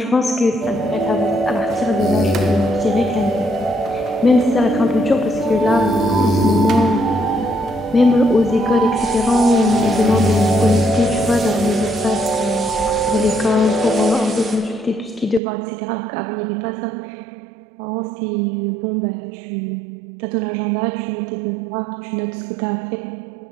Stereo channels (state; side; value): drops out; left; at 15.4 s